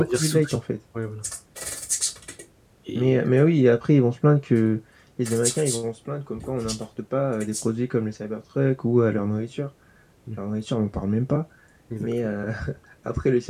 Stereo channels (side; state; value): both; identical; correlation 1.00